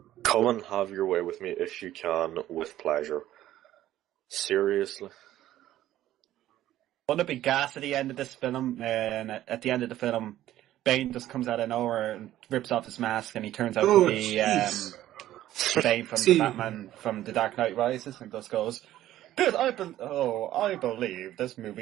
Come and have your way with me if you can, with pleasure. Seriously. Wouldn't it be gas at the end of this film? And at the end of the film, Bane just comes out of nowhere and rips off his mask, and he turns out Oh, to be jeez. Bane from See. the Batman from The Dark Knight Rises, and just goes, "Good, I believe this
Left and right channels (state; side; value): quieter; left; 13.5 dB